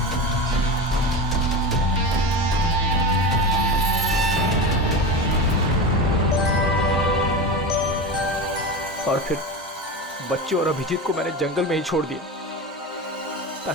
और फिर बच्चे और अभिजीत को मैंने जंगल में ही छोड़ दिया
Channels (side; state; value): both; normal; correlation 0.25